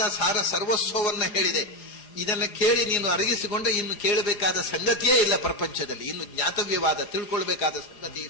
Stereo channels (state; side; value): late; right; 4.8 ms